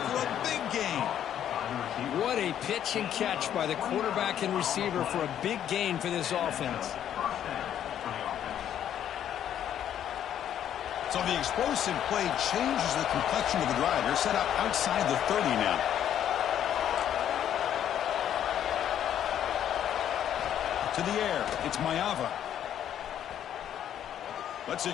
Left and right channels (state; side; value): quieter; right; 10.2 dB